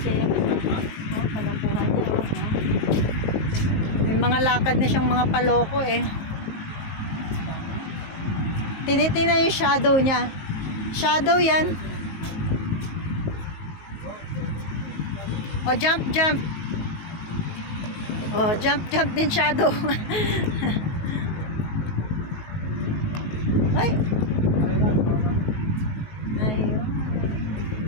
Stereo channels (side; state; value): right; late; 19 ms